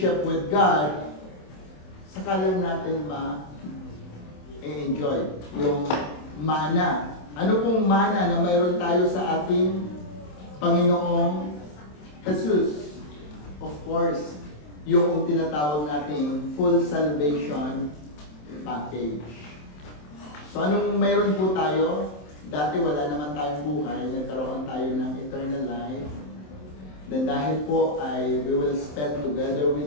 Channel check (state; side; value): late; right; 27 ms